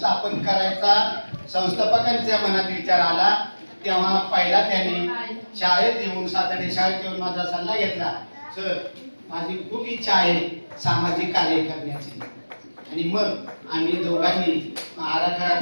करायचा संस्थापकांच्या मनात विचार आला तेव्हा पहिला त्यांनी शाळेत येऊन सातार्डे शाळेत येऊन माझा सल्ला घेतला. सर, माझी खूप इच्छा आहे सामाजिक कार्य करण्याची. आणि मग आम्ही दोघांनी आराखडा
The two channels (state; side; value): inverted; both; correlation -1.00